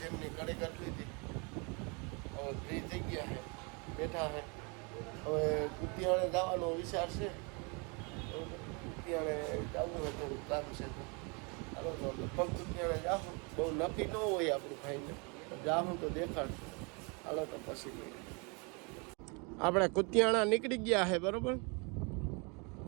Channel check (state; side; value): quieter; left; 31.8 dB